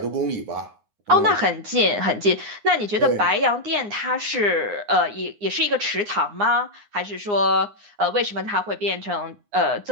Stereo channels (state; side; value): late; left; 9.7 ms